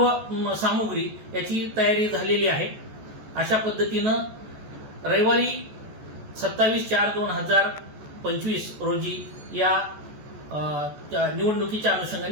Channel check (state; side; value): late; left; 14 ms